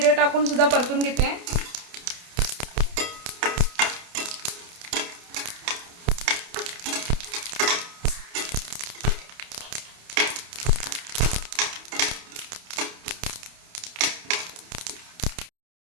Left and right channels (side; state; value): left; late; 28 ms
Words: टाकून सुद्धा परतून घेते।